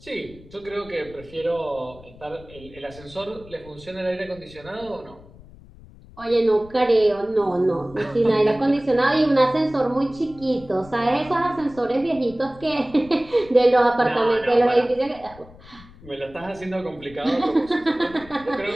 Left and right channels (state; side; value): noise; left; rumble, 21 dB below the sound